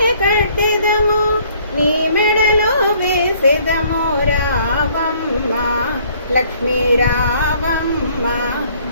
కట్టెదము నీ మెడలో వేసెదము రావమ్మ లక్ష్మీ రావమ్మ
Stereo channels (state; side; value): inverted; both; correlation -0.61